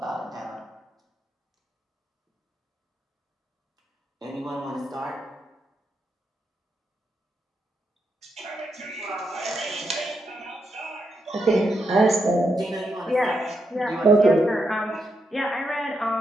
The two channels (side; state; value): both; normal; correlation 0.82